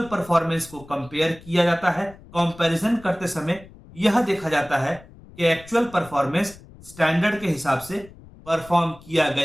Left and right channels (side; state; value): left; noise; rumble, 21 dB below the sound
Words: परफॉर्मेंस को कंपेयर किया जाता है। कंपैरिजन करते समय यह देखा जाता है कि एक्चुअल परफॉर्मेंस स्टैंडर्ड के हिसाब से परफॉर्म किया